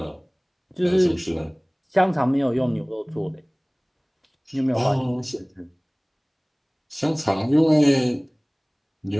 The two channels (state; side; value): identical; both; correlation 1.00